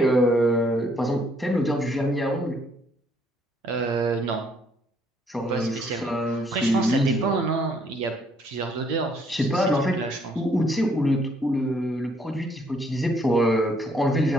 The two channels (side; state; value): both; normal; correlation 0.67